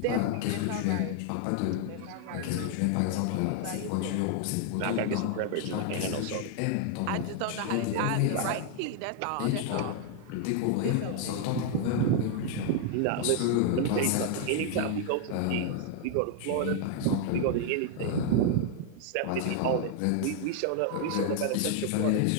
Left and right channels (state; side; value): different; both; correlation 0.00